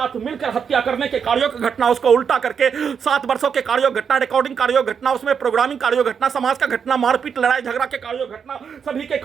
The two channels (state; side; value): quieter; left; 6.9 dB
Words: मिलकर हत्या करने के कार्यों की घटना उसको उल्टा करके 7 वर्षों के कार्यों घटना रिकॉर्डिंग कार्यों घटना उसमें प्रोग्रामिंग कार्यों घटना समाज का घटना मारपीट लड़ाई झगड़ा के कार्यों घटना सभी के